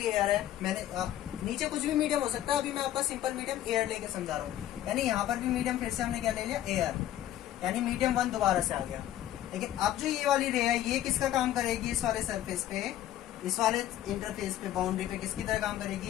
एयर है। मैंने नीचे कुछ भी मीडियम हो सकता है, अभी मैं आपका सिंपल मीडियम एयर लेके समझा रहा हूँ। यानी यहाँ पर भी मीडियम फिर से हमने क्या ले लिया, एयर, यानी मीडियम 1 दोबारा से आ गया। लेकिन अब जो ये वाली रे है, ये किसका काम करेगी, इस वाले सरफेस पे, इस वाले इंटरफेस पे, बाउंड्री पे किसकी तरह काम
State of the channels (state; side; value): quieter; right; 12.7 dB